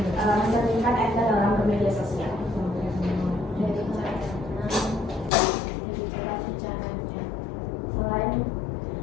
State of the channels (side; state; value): right; drops out; at 5.3 s